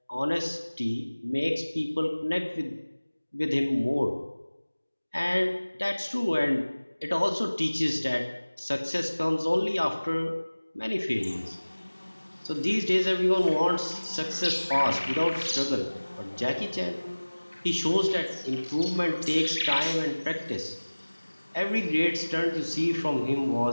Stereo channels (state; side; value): inverted; both; correlation -1.00